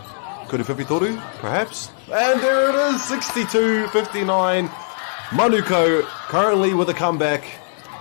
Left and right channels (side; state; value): right; silent; digital silence